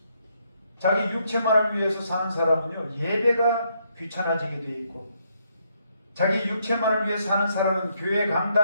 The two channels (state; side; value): inverted; both; correlation -0.74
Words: 자기 육체만을 위해서 사는 사람은요 예배가 귀찮아지게 돼 있고 자기 육체만을 위해 사는 사람은 교회